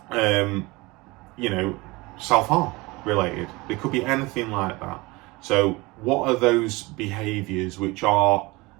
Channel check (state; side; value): quieter; left; 23.2 dB